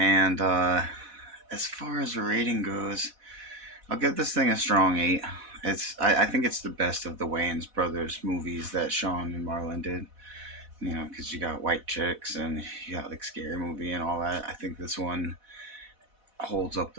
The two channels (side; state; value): left; late; 4.1 ms